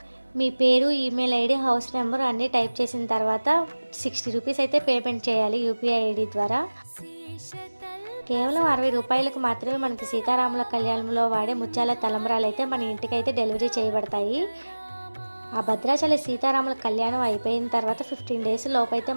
మీ పేరు, ఈమెయిల్ ఐడీ, హౌస్ నెంబర్ అన్నీ టైప్ చేసిన తర్వాత 60 రూపీస్ అయితే పేమెంట్ చేయాలి యూపీఐ ఐడీ ద్వారా. కేవలం 60 రూపాయలకు మాత్రమే మనకి సీతారాముల కళ్యాణంలో వాడే ముత్యాల తలంబ్రాలు అయితే మన ఇంటికైతే డెలివరీ చేయబడతాయి. ఆ భద్రాచల సీతారాముల కళ్యాణం అయిపోయిన తర్వాత 15 డేస్ లోపైతే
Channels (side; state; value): both; inverted; correlation -1.00